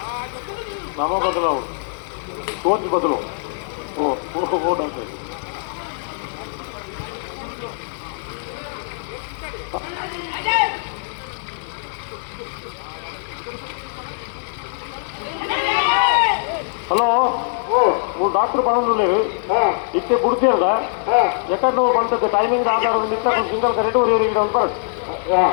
ನವ ಬದಲಾವಣೆ ಸೋಚ್ ಬದಲು ಓಟ್ ಅಂತ హలో నువ్వు డాక్టర్ పనులు లేవు ఇచ్చే పుడితే కదా ఎక్కడ నువ్వు పండుతుంది టైమింగ్ ఆధారం ఇస్తే సింగల్ కరెక్ట్ ఊరికి ఉంటాడు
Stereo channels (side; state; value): right; silent; 65 dB below the other